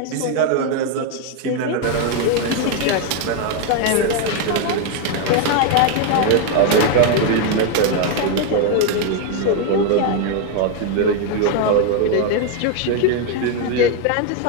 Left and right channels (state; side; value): different; both; correlation 0.01